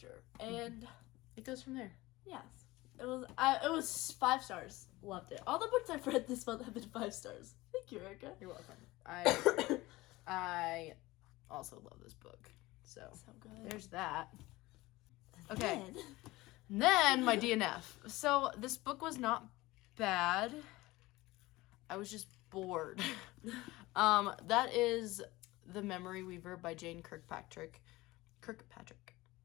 And it goes from there. yes. It was 5 stars. Loved it. All the books I've read this month have been 5 stars. Thank you, Erica. You're welcome. I also love this book. So good. There's that. Okay. Then my DNF. So this book was not bad. I was just bored. That is The Memory Weaver by Jane Kirkpatrick.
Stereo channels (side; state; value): right; quieter; 19.7 dB